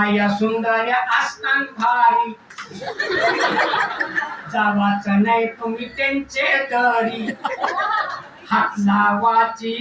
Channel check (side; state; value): both; identical; correlation 1.00